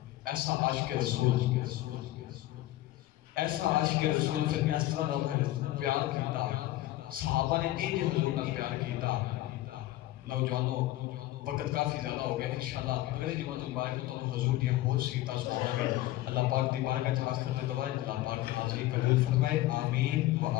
ایسا عاشق رسول ایسا عاشق رسول پھر اس طرح نہ پیار کیتا صحابہ نے انج حضور نہ پیار کیتا نوجوانوں وقت کافی زیادہ ہو گیا انشاءاللہ اگلے جمعہ مبارک میں تو حضور دی بہت سیرتاں سناواں گے اللہ پاک دی بارگاہ وچ آخر تے دعا اللہ پاک حاضری قبول فرمائے آمین و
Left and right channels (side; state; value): right; quieter; 16.2 dB